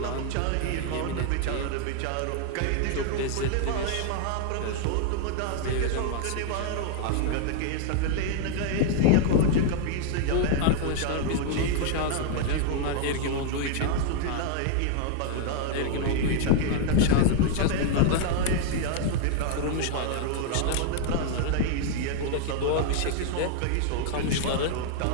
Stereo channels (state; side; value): different; both; correlation 0.00